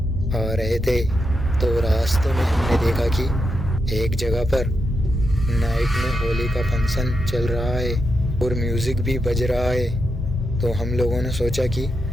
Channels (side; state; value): both; normal; correlation 0.85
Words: रहे थे तो रास्ते में हमने देखा कि एक जगह पर नाइट में होली का फंक्शन चल रहा है और म्यूज़िक भी बज रहा है। तो हम लोगों ने सोचा कि